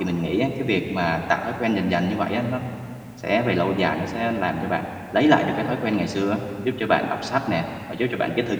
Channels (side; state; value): both; identical; correlation 1.00